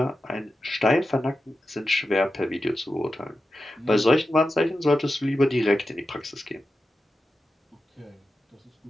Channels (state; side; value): normal; both; correlation 0.91